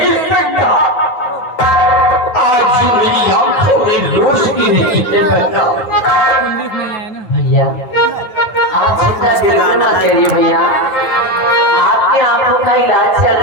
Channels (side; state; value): right; late; 9.8 ms